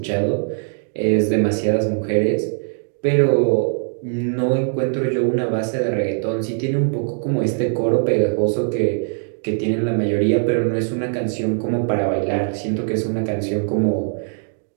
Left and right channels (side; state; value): left; silent; 63 dB below the other